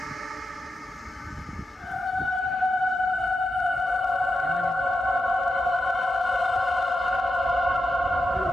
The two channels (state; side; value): normal; both; correlation 0.88